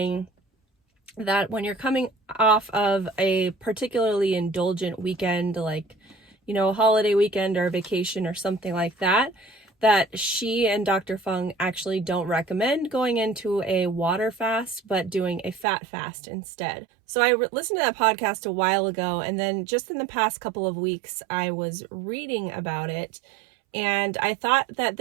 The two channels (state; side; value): drops out; left; at 15.7 s